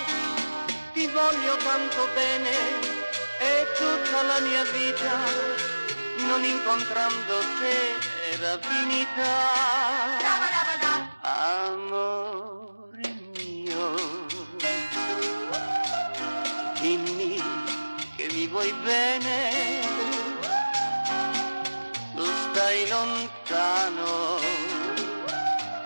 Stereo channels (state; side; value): inverted; both; correlation -1.00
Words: Ti voglio tanto bene e tutta la mia vita, non incontrando te era finita. Amore mio, dimmi che mi vuoi bene, tu stai lontano